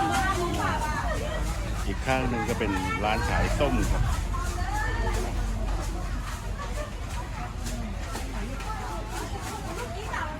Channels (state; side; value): identical; both; correlation 1.00